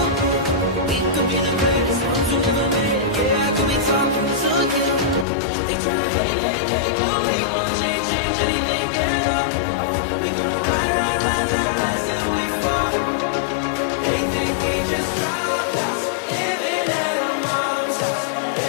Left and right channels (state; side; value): drops out; right; at 5.2 s